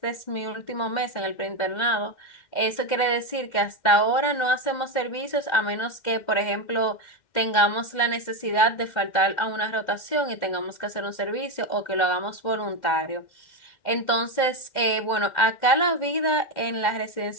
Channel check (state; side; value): late; right; 2.1 ms